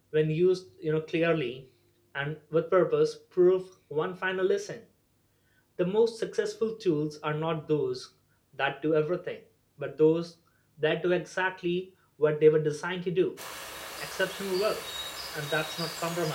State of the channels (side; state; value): both; identical; correlation 1.00